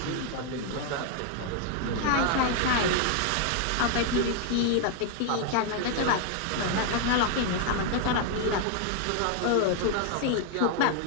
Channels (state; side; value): different; both; correlation 0.00